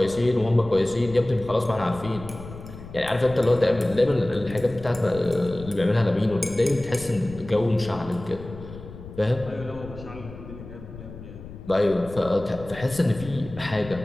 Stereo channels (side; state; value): left; noise; rumble, 14 dB below the sound